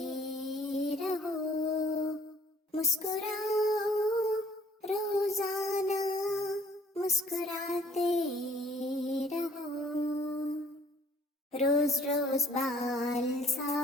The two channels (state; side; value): normal; both; correlation 0.59